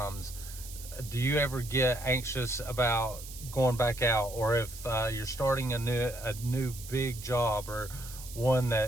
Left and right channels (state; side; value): noise; right; hiss, 14 dB below the sound